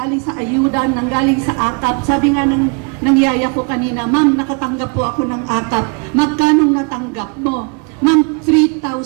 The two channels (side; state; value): left; quieter; 35.9 dB